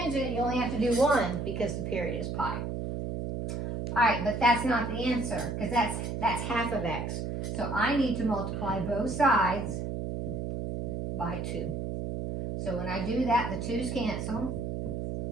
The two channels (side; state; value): right; noise; hum, 3 dB below the sound